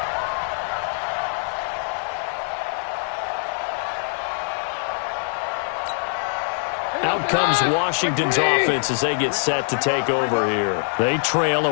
Out comes Washington's offense as they get set to take over here. They trail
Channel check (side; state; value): right; silent; digital silence